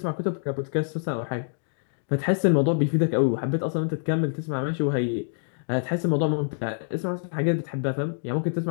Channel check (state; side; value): silent; right; digital silence